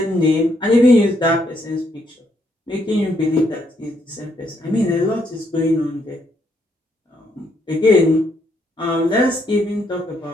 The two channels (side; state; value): both; normal; correlation 0.74